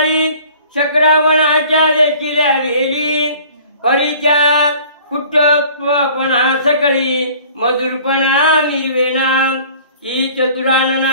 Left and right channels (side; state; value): both; inverted; correlation -0.50